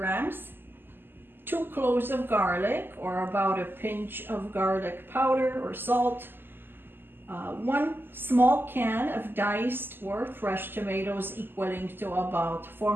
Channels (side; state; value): left; late; 0.097 ms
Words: 2 cloves of garlic, or about a pinch of garlic powder or salt, 1 small can of diced or fresh tomatoes equaling to about